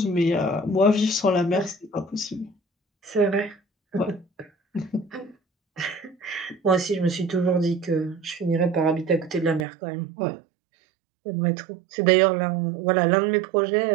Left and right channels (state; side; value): drops out; left; at 9.7 s